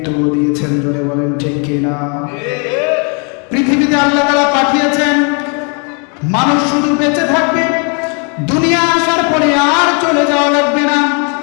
দিয়েছেন। জোরে বলেন ঠিক কিনা? পৃথিবীতে আল্লাহ তাআলা পাঠিয়েছেন, মানুষ শুধু বেঁচে থাকবে, দুনিয়া আসার পরে আর চলে যাওয়া লাগবে না,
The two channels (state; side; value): quieter; right; 36.8 dB